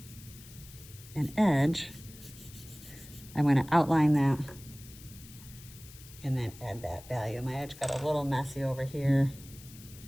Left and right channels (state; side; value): noise; left; hiss, 19 dB below the sound